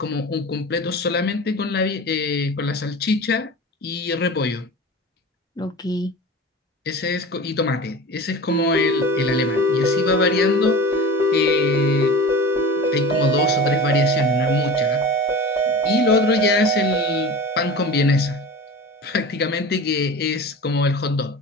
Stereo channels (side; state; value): both; normal; correlation 0.34